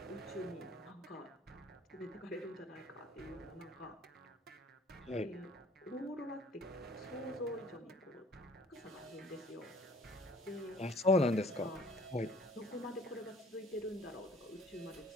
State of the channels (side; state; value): both; normal; correlation 0.54